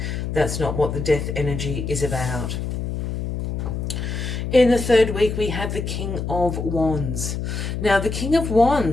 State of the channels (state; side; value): noise; left; hum, 4 dB below the sound